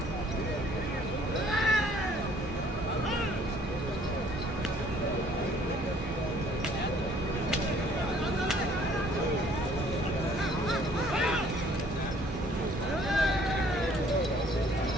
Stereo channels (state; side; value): normal; both; correlation 0.59